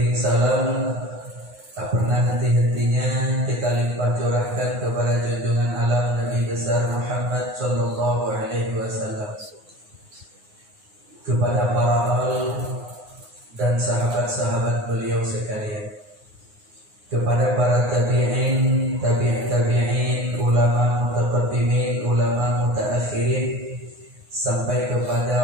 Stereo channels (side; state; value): left; late; 9.6 ms